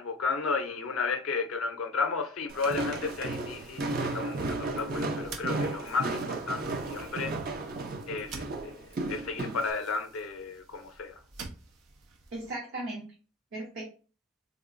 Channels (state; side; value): normal; both; correlation 0.35